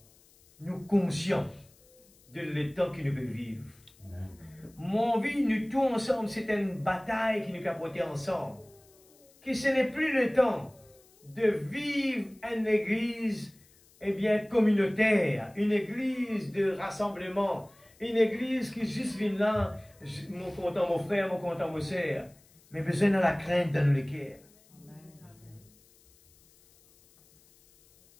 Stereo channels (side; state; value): left; noise; hiss, 29 dB below the sound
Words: nous conscients de l'état que nous devons vivre. Amen. Mon envie, nous tous ensemble, c'est une bataille qui nous a porté ensemble. Que ce n'est plus le temps de vivre une église, eh bien, communautaire, une église de rassemblement, une église qui juste vient là, mon content mon frère, mon content mon sœur, mais besoin de la crainte dans le cœur.